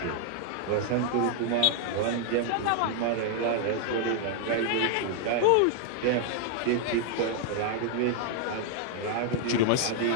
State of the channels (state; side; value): different; both; correlation 0.00